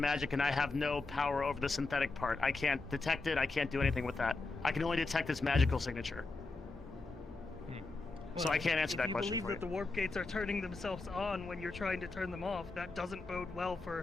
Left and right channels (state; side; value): quieter; right; 3.6 dB